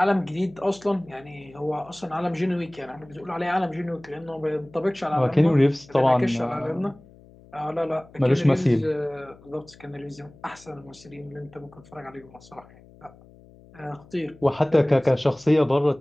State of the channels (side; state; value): left; noise; hum, 24 dB below the sound